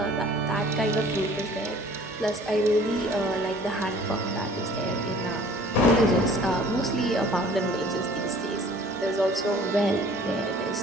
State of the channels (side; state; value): both; normal; correlation 0.51